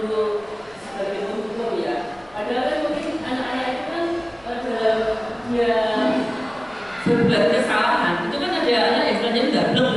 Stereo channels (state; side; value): noise; left; rumble, 28 dB below the sound